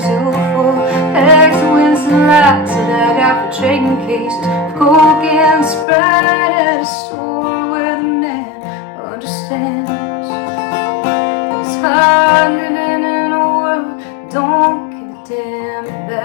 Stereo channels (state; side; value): drops out; right; at 5.9 s